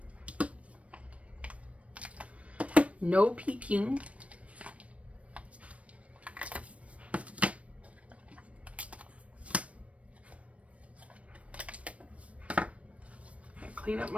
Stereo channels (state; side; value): late; left; 0.064 ms